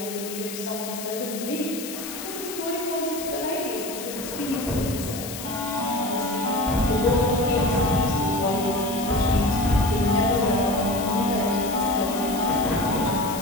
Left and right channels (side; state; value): left; noise; hiss, 9 dB below the sound